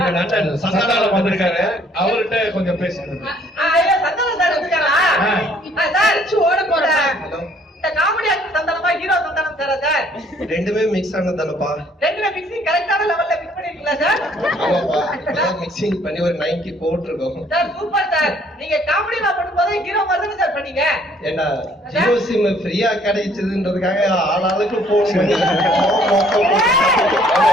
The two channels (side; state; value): both; normal; correlation 0.61